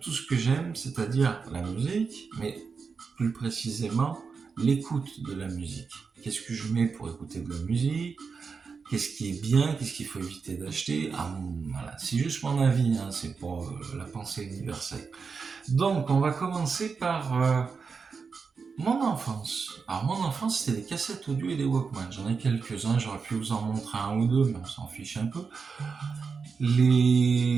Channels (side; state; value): left; quieter; 5.3 dB